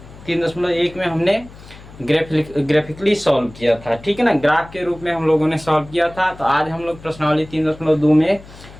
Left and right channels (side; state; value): left; noise; hum, 19 dB below the sound